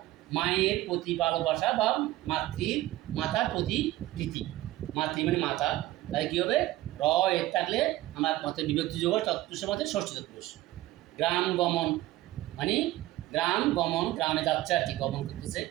মায়ের প্রতি ভালোবাসা বা মাতার প্রতি প্রীতি। মাতৃ মানে মাতা। তাহলে কী হবে? র এর থাকলে আমার মতে বিভক্তি যোগ তৎপুরুষের মধ্যে ষষ্ঠী তৎপুরুষ। গ্রাম গমন মানে গ্রাম গমন, গ্রামে যাচ্ছে আর কি, গমন করতেছে,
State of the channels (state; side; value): quieter; left; 16.4 dB